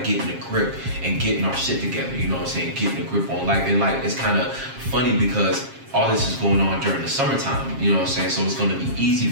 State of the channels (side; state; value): left; late; 7.4 ms